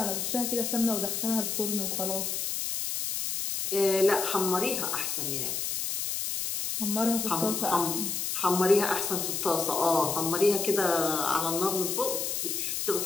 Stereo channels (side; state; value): left; noise; hiss, 2 dB below the sound